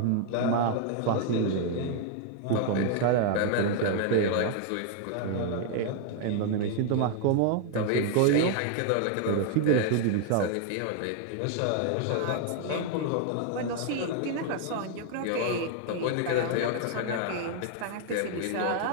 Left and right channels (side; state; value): both; different; correlation 0.00